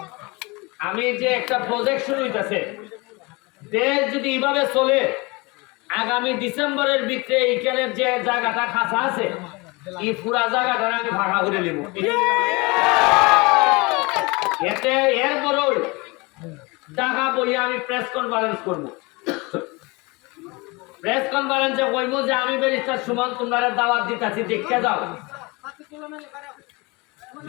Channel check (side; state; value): right; quieter; 26.0 dB